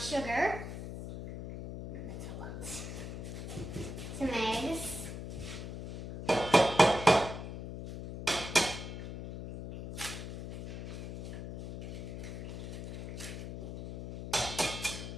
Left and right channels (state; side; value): noise; left; hum, 7 dB below the sound